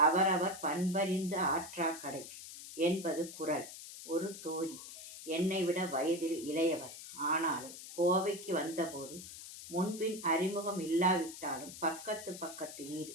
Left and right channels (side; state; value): left; noise; hiss, 13 dB below the sound